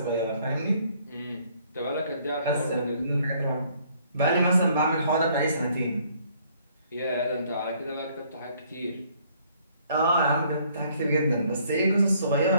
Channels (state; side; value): inverted; both; correlation -0.64